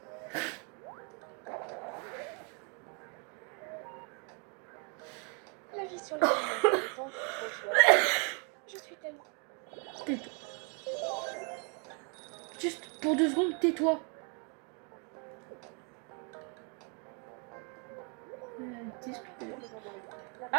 La vie sur le monde est tant trop chouette. Je suis tellement... Tais-toi. Juste pour 2 secondes, tais-toi. Discuter.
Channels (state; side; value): quieter; left; 37.3 dB